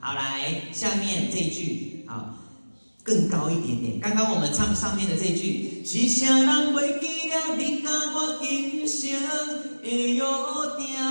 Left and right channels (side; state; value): both; inverted; correlation -1.00